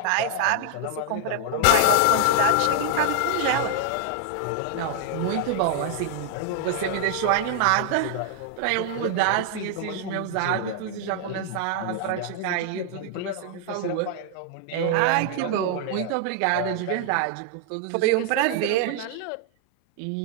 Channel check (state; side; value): different; both; correlation 0.00